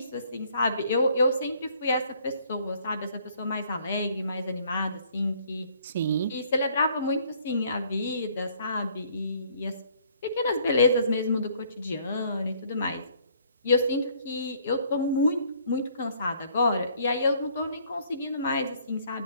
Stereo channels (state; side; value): inverted; both; correlation -0.62